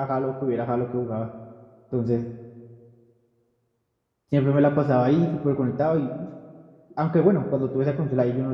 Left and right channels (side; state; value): both; identical; correlation 1.00